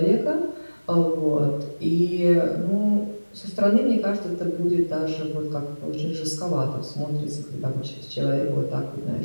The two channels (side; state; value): both; inverted; correlation -1.00